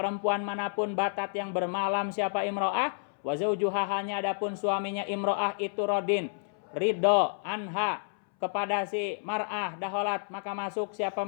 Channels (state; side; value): silent; right; 58 dB below the other